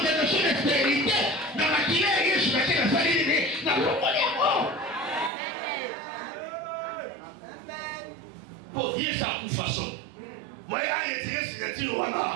des stérilité. Dans la guinée, je vais la saline, dans le pour dire ça de façon. Moi, j'ai retiré signature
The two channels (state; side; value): drops out; left; at 5.3 s